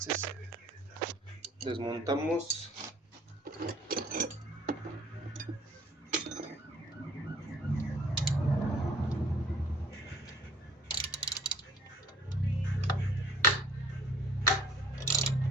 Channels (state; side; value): normal; both; correlation 0.55